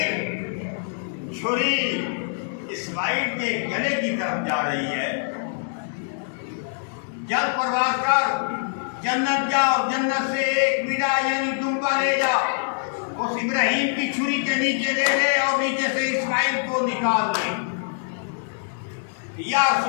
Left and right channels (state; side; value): silent; right; digital silence